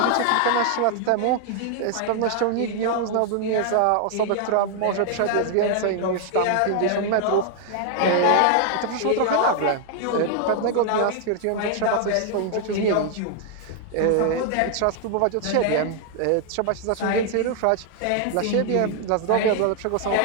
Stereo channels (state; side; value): different; both; correlation 0.00